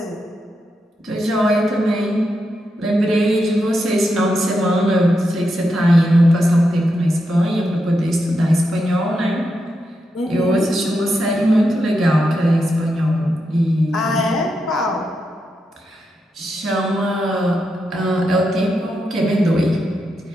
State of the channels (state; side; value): normal; both; correlation 0.85